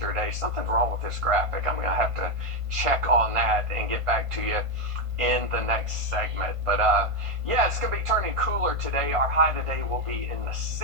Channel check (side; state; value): left; late; 1.5 ms